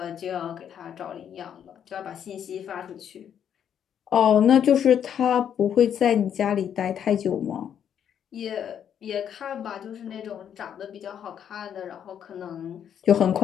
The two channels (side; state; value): right; quieter; 8.9 dB